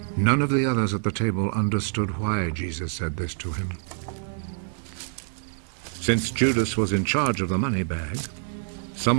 None of the others at the table understood why Jesus said this to him. Since Judas was in charge of the money bag,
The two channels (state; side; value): silent; left; 57 dB below the other